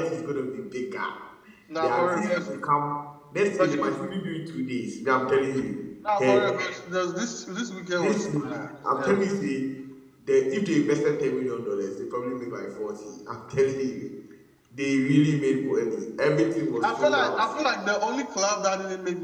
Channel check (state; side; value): identical; both; correlation 1.00